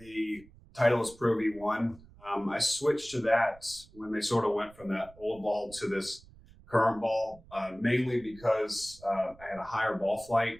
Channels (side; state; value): right; noise; rumble, 23 dB below the sound